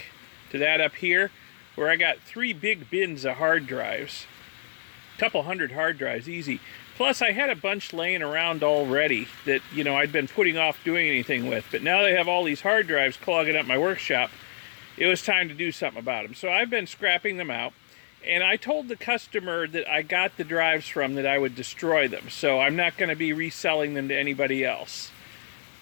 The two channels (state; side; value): silent; right; digital silence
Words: to that up here, where I got 3 big bins of hard drives. A couple hundred hard drives, easy. Plus, I had a bunch laying around already that, I'd been putting off doing anything with. But now they have all these hard drives clogging up my workshop, it was time to do something about them. So I've been scrapping them out, and I told the customer that I got the drives from that I would destroy them. So I'm not going to be reselling them to anybody else.